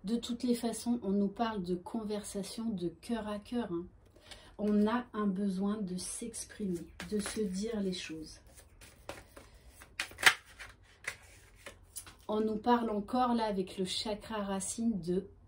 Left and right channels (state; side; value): identical; both; correlation 1.00